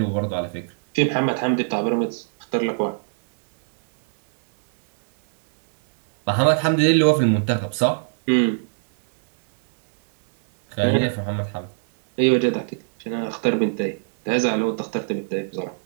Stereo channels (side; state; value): left; silent; digital silence